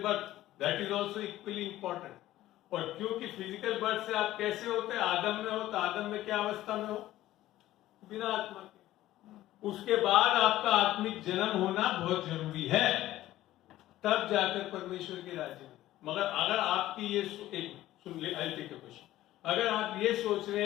birth, that is also equally important. और क्योंकि फिजिकल बर्थ से आप कैसे होते हैं? आदम में हो, तो आदम में क्या अवस्था में हो? बिना आत्मा के। उसके बाद आपका आत्मिक जन्म होना बहुत जरूरी है, तब जाकर परमेश्वर के राज्य में। मगर अगर आपकी ये सुन ले, आई टेक अ क्वेश्चन। अगर आप ये सोच रहे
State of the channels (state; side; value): quieter; right; 14.8 dB